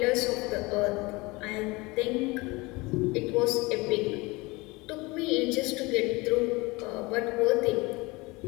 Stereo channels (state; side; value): quieter; right; 23.8 dB